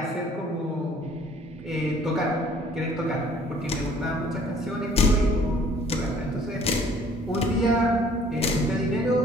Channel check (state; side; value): normal; both; correlation 0.56